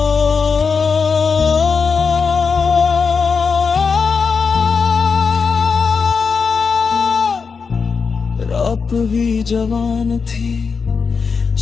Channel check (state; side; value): quieter; right; 5.4 dB